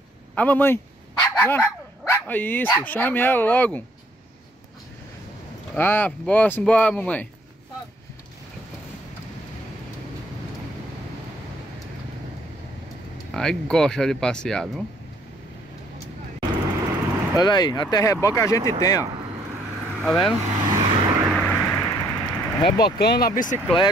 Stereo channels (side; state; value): both; normal; correlation 0.65